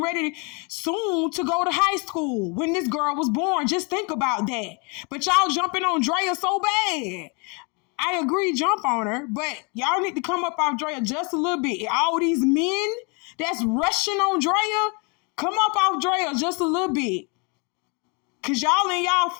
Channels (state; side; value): quieter; right; 32.6 dB